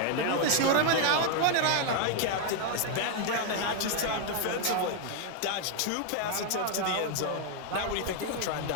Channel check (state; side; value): different; both; correlation 0.00